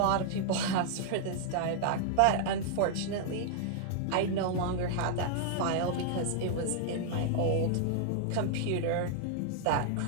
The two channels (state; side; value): different; both; correlation -0.01